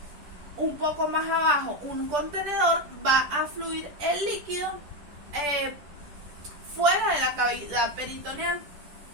un poco más abajo un contenedor, va a fluir el líquido fuera de la cavidad peritoneal.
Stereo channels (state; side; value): late; left; 10 ms